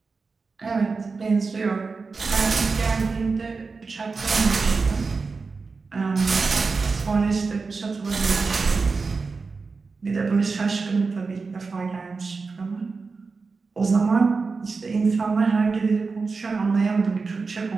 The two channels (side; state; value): left; quieter; 4.4 dB